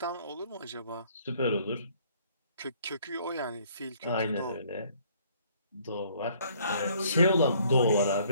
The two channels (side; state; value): both; inverted; correlation -0.61